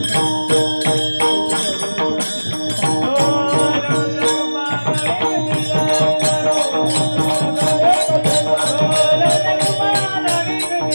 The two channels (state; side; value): inverted; both; correlation -1.00